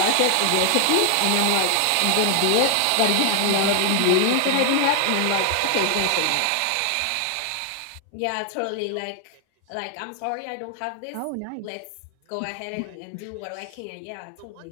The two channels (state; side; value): different; both; correlation 0.00